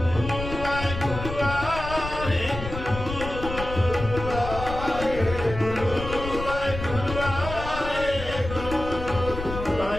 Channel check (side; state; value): left; noise; rumble, 8 dB below the sound